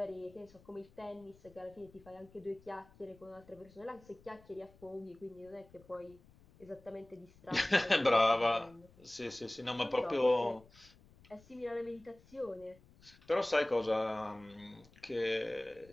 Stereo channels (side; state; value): left; noise; rumble, 25 dB below the sound